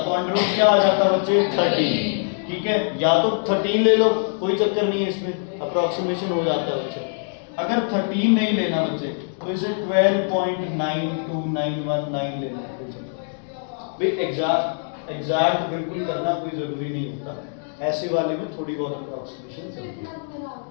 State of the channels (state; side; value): silent; right; digital silence